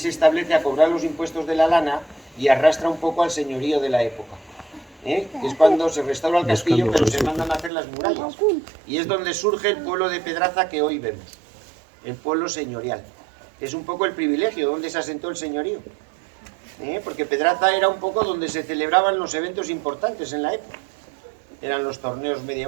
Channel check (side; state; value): left; drops out; at 7.7 s